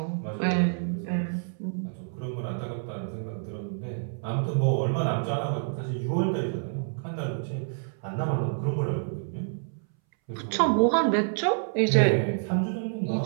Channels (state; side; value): silent; left; 59 dB below the other